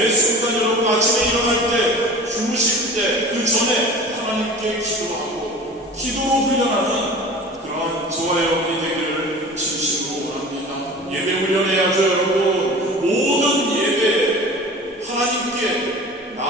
순간 여러분 아침에 일어날 때, 주무실 때 그 전에 하나님께 기도하고 기도로 훈련하는 그러한 저와 여러분이 되기를 진심으로 원합니다. 예배 훈련해야죠. 여러분, 모든 예배 하나님께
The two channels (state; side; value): normal; both; correlation 0.38